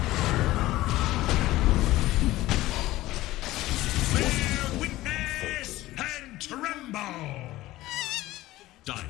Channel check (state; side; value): quieter; right; 16.9 dB